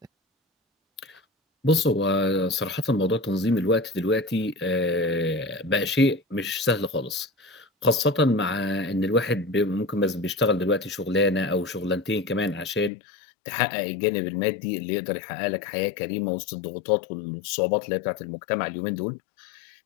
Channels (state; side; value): drops out; right; at 12.9 s